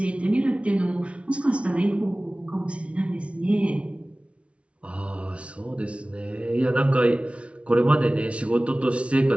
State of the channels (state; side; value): late; left; 0.061 ms